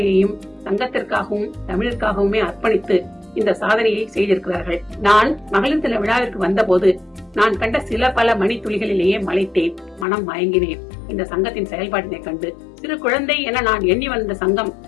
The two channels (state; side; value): drops out; right; at 10.1 s